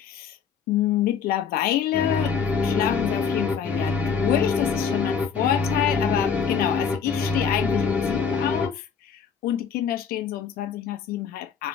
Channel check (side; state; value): right; quieter; 6.6 dB